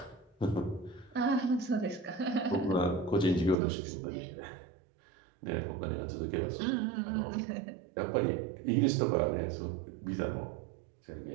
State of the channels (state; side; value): drops out; left; at 3.6 s